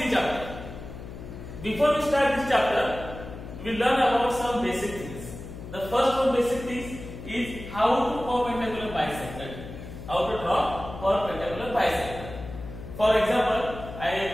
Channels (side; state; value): left; noise; hum, 12 dB below the sound